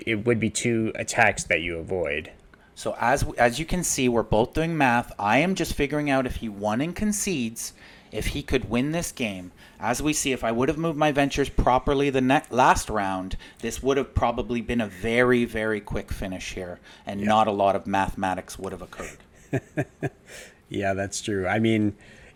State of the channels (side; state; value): both; identical; correlation 1.00